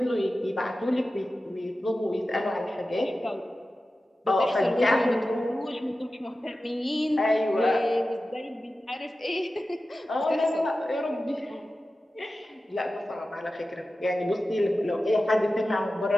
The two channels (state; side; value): normal; both; correlation 0.94